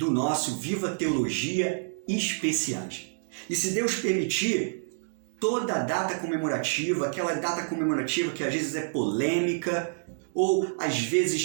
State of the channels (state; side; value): silent; left; digital silence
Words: nosso Viva Teologia Especiais. E se Deus permitir, toda a data comemorativa, aquela data comemorativa que às vezes é polêmica ou às